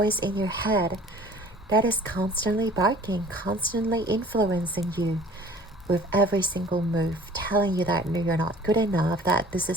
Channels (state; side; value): normal; both; correlation 0.49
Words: in your head that is constantly barking, constantly influencing you with every single move, telling you that no, you're not good enough, that this